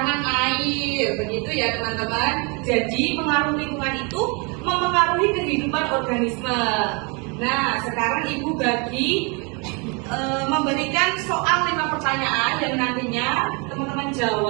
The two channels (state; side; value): quieter; left; 32.0 dB